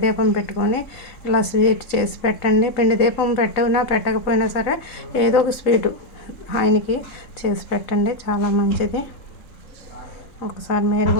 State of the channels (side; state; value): right; late; 3.7 ms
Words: దీపం పెట్టుకొని ఇలా స్వీట్ చేసి పెట్టండి. పిండి దీపం పెట్టకపోయినా సరే ఏదో ఒక స్వీటు ఆయనకి చేసి పెట్టండి, చాలా మంచిది. ఒకసారి మీరు